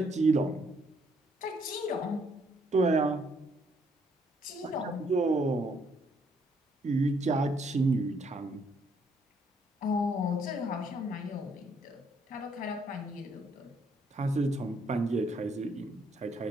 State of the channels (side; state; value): both; normal; correlation 0.70